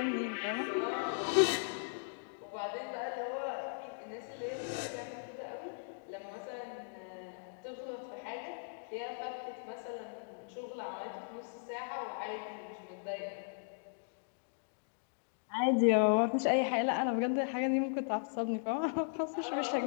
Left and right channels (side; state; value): right; silent; digital silence